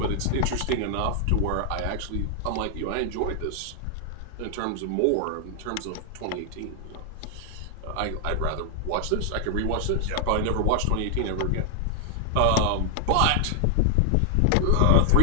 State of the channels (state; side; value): different; both; correlation 0.00